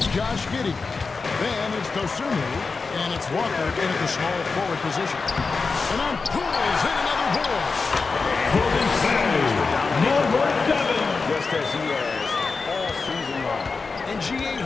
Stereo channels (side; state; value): right; quieter; 4.4 dB